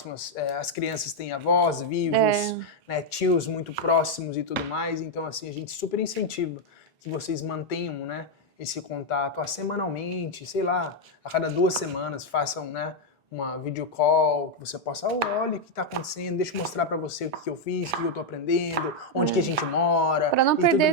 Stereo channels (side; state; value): both; normal; correlation 0.01